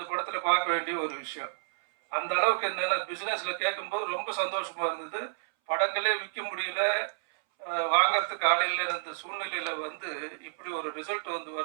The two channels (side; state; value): left; silent; 58 dB below the other